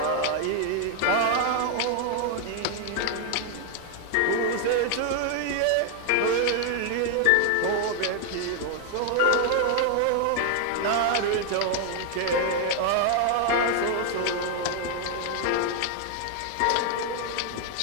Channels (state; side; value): different; both; correlation 0.00